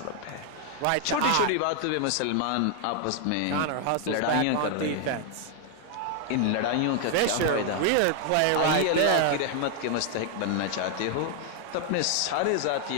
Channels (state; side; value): different; both; correlation 0.00